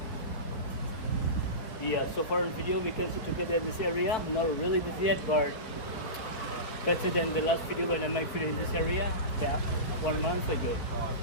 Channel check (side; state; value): right; late; 4.6 ms